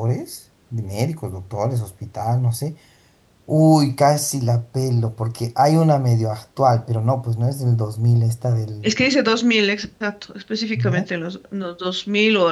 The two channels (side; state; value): both; identical; correlation 1.00